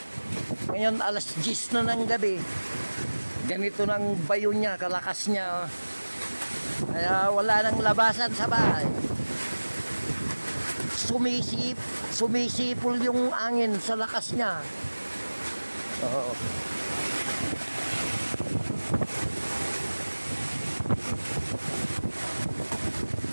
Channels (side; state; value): both; inverted; correlation -1.00